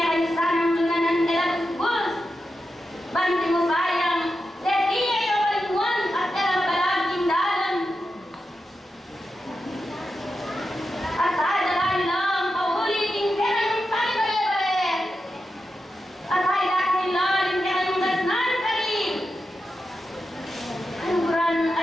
ang lunanan elabus bus, banting mo bayang, leti ay awalimuan at elabalaking dalan. At ay dalain lang, pauli, tinggi yung tayo bale-bale. At ay dahil lang, tinggi yung gasnan kali. Kaluguran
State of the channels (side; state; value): both; normal; correlation 0.89